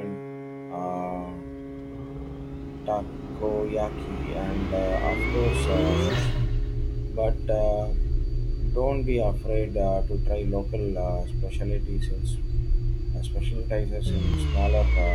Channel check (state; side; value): identical; both; correlation 1.00